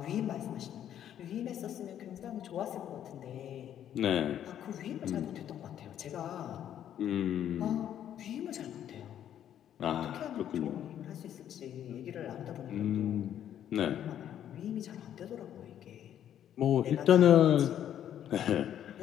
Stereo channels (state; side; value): quieter; right; 10.4 dB